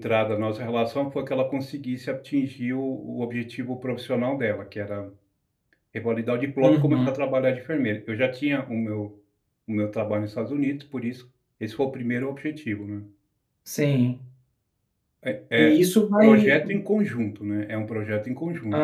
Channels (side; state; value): both; identical; correlation 1.00